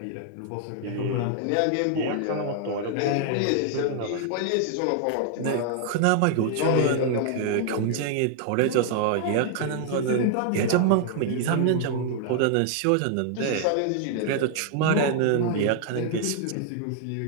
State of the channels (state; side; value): different; both; correlation 0.00